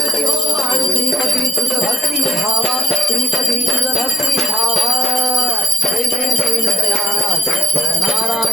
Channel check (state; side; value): normal; both; correlation 0.72